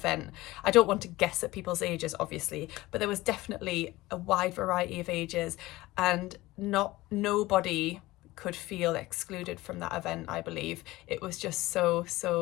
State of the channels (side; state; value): right; quieter; 18.8 dB